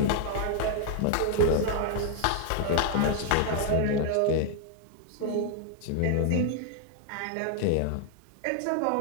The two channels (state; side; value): different; both; correlation 0.00